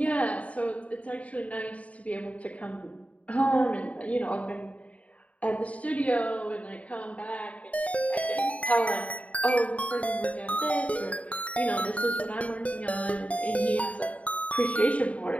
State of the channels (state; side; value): late; right; 0.067 ms